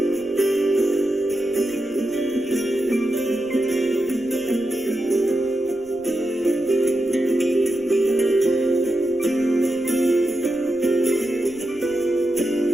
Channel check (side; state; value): right; noise; rumble, 28 dB below the sound